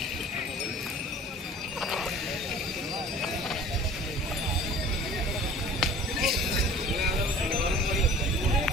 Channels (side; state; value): both; normal; correlation 0.45